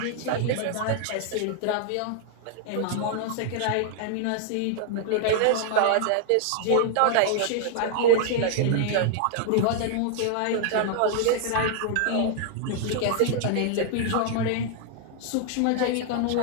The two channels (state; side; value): different; both; correlation 0.00